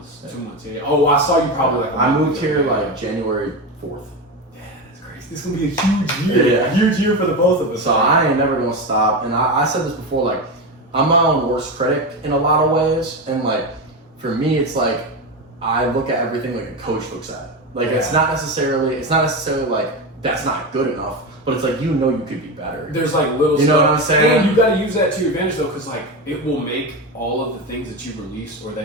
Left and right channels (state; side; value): normal; both; correlation 0.18